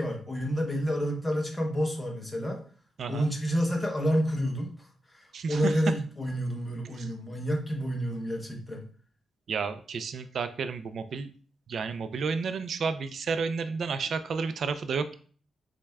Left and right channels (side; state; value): both; normal; correlation 0.88